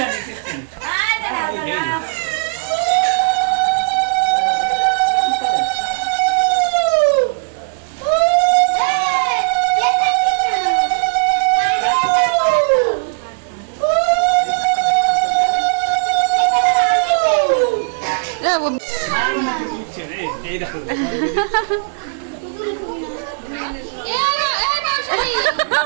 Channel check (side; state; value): left; silent; digital silence